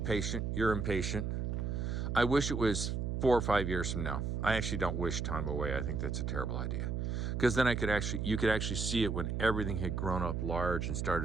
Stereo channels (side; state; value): right; noise; hum, 1 dB below the sound